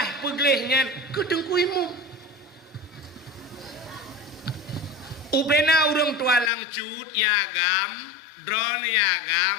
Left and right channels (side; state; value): right; drops out; at 6.5 s